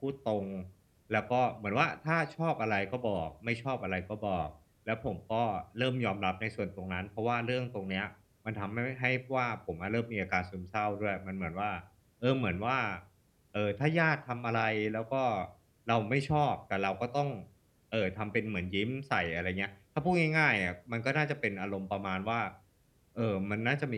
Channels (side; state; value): both; identical; correlation 1.00